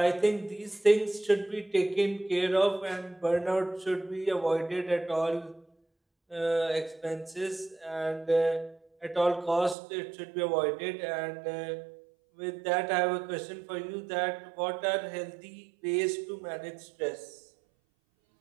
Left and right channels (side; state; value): left; drops out; at 9.8 s